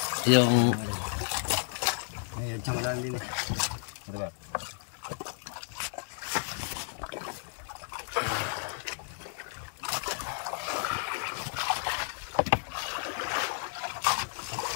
Yung Ay, adya mo lang din eh. Diba?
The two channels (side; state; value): right; silent; 56 dB below the other